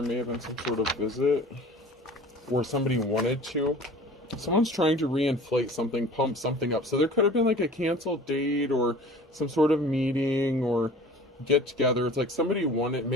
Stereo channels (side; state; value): both; normal; correlation 0.44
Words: may have been some sort of visit, or somebody wanted to. Someone's trying to reinflate something, pump something up. So there could have been like a canceled date or some sort of meeting or get together. It's like somebody